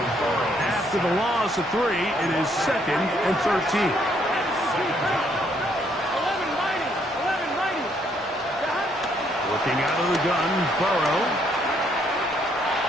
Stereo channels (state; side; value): normal; both; correlation 0.70